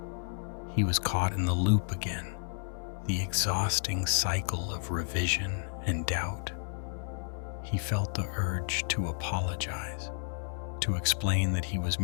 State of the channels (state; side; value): silent; right; 57 dB below the other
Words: He was caught in the loop again, the exhausting cycle of revision and doubt. He felt the urge to apologize, to explain that he was